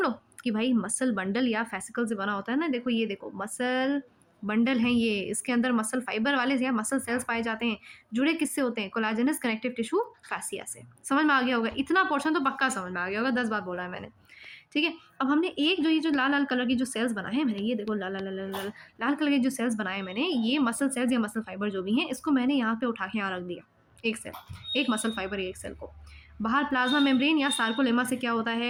लोग कि भाई मसल बंडल या फैसिकल से बना होता है ना। देखो ये देखो, मसल बंडल है ये, इसके अंदर मसल फाइबर वाले या मसल सेल्स पाए जाते हैं। जुड़े किससे होते हैं? कोलाजेनस कनेक्टिव टिश्यू फैसिया से। समझ में आ गया होगा? इतना पोर्शन तो पक्का समझ में आ गया होगा, 10 बार बोला है मैंने, ठीक है। अब हमने एक जो ये जो लाल लाल कलर की जो सेल्स बनाए हैं मैंने, ये देखो लाल लाल लाल लाल लाल कलर के जो सेल्स बनाए मैंने, ये मसल सेल्स या मसल फाइबर जो भी हैं, इसको मैंने यहाँ पे उठा के यहाँ रख दिया। एक सेल, एक मसल फाइबर, एक सेल को बाहर प्लाज्मा मेम्ब्रेन या सार्कोलेमा से क्या होता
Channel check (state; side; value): identical; both; correlation 1.00